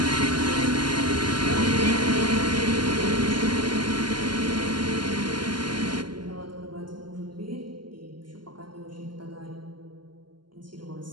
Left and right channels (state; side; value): late; left; 0.71 ms